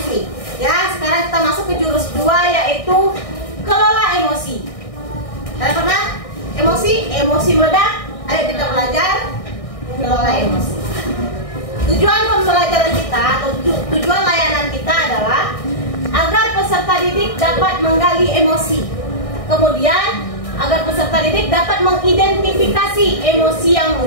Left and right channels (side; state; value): right; late; 1.6 ms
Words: Ya, sekarang kita masuk ke jurus 2, yaitu kelola emosi. Kalian pernah emosi meledak? Ayo kita belajar kelola emosi. Tujuan pembelajaran kita atau tujuan layanan kita adalah agar peserta didik dapat menggali emosi. Kemudian agar peserta didik dapat mengidentifikasi emosi yang